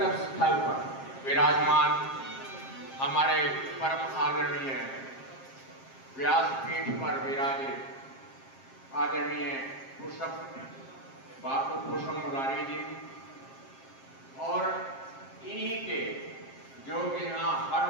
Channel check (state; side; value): late; right; 7.5 ms